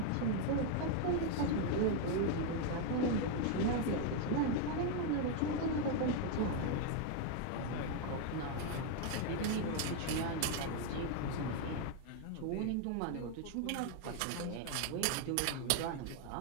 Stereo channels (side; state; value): both; different; correlation 0.01